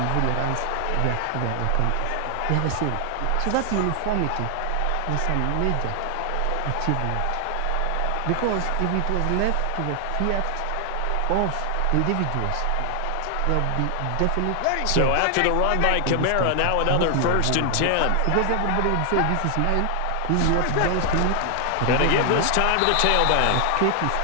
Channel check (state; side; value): different; both; correlation 0.00